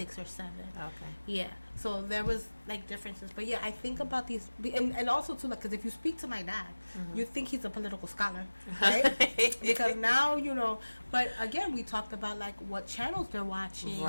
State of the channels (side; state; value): both; inverted; correlation -1.00